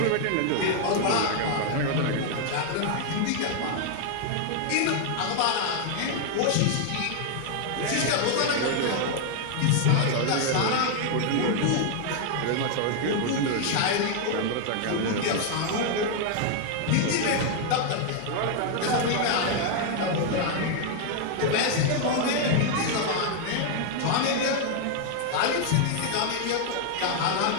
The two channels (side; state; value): both; different; correlation 0.00